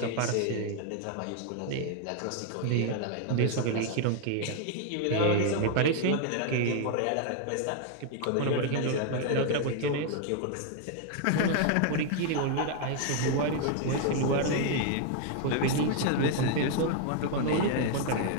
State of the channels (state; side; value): different; both; correlation 0.00